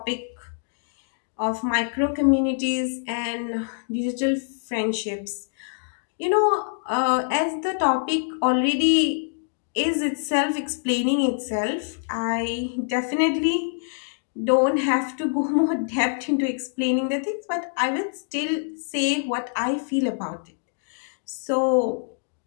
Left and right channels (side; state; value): right; silent; digital silence